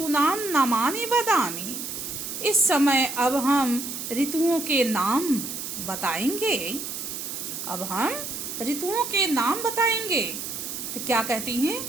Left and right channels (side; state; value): right; noise; hiss, 6 dB below the sound